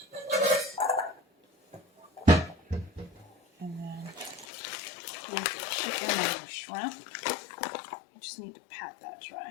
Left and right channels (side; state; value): right; drops out; at 4.5 s